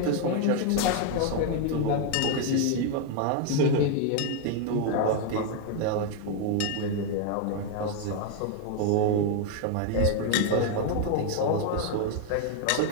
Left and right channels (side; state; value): both; different; correlation 0.01